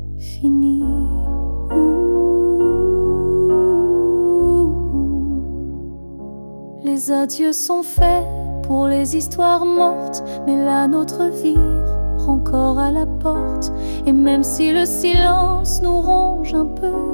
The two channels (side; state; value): both; inverted; correlation -1.00